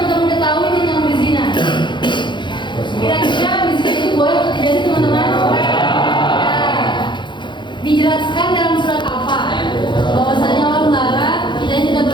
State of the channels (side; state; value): right; late; 0.23 ms